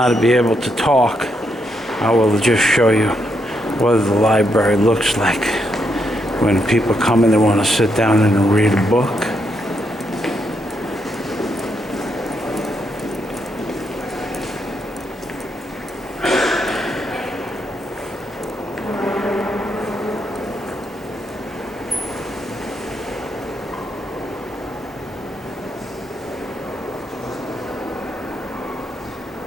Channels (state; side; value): normal; both; correlation 0.79